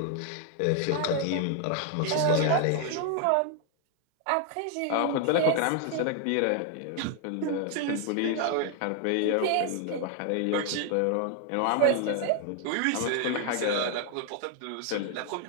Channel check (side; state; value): both; different; correlation 0.00